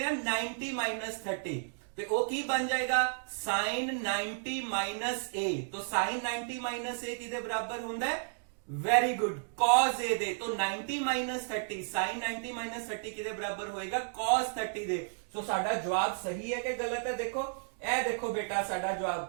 ਹਾਂ, 90 30। ਤੇ ਉਹ ਕੀ ਬਣ ਜਾਏਗਾ, sin 90 a। तो sin 90 a ਕਿਹਦੇ ਬਰਾਬਰ ਹੁੰਦਾ ਹੈ, ਵੈਰੀ ਗੁੱਡ, cos a ਦੇ। तो 90 30 sin 90 30 ਕਿਹਦੇ ਬਰਾਬਰ ਹੋਏਗਾ, cos 30 ਦੇ। ਸੋ ਸਾਡਾ ਜਵਾਬ ਸਹੀ ਹੈ ਕਿ ਗਲਤ ਹੈ, ਦੇਖੋ ਇਹ ਦੇਖੋ ਬੇਟਾ ਸਾਡਾ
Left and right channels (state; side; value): silent; left; digital silence